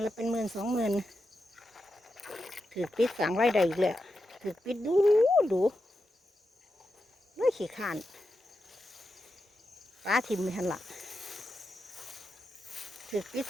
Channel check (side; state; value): both; normal; correlation 0.88